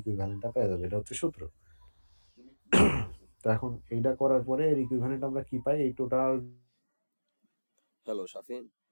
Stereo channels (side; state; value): both; inverted; correlation -1.00